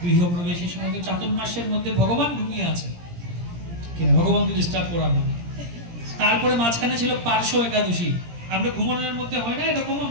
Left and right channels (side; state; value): left; late; 17 ms